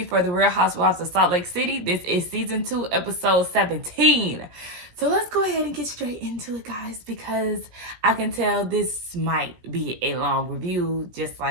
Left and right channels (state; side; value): late; left; 17 ms